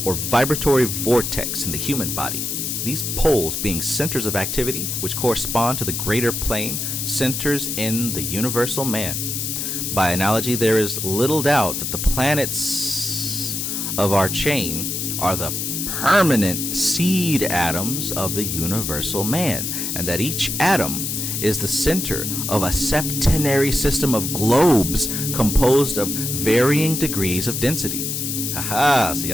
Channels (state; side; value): noise; left; hiss, 3 dB below the sound